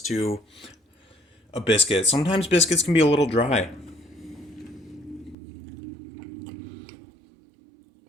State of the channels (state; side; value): drops out; left; at 5.4 s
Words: to a biscuit. Sometimes biscuits can be a little dry.